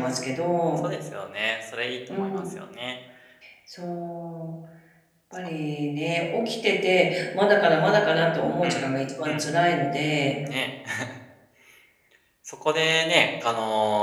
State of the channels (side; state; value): both; identical; correlation 1.00